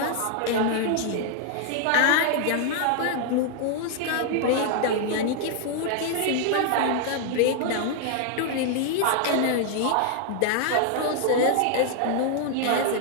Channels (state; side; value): different; both; correlation 0.00